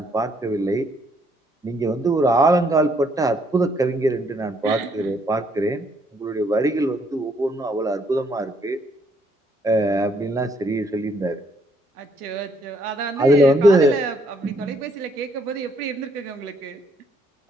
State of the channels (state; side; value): normal; both; correlation 0.69